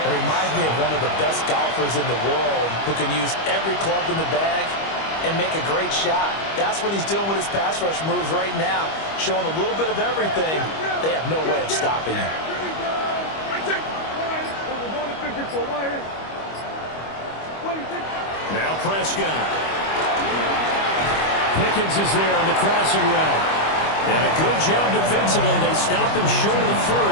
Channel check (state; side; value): late; right; 25 ms